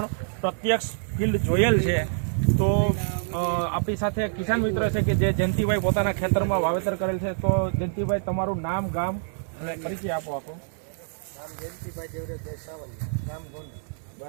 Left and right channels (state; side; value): silent; left; 61 dB below the other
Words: પ્રત્યક્ષ ફિલ્ડ જોયેલ છે. તો આપણી સાથે કિસાન મિત્ર છે કે જે જયંતિભાઈ પોતાના ખેતરમાં વાવેતર કરેલ છે. તો જયંતિભાઈ, તમારું નામ, ગામ અને પરિચય આપો. નામ જયંતિભાઈ દેવરાજભાઈ સાવલિયા, ગામ ગોંડલ.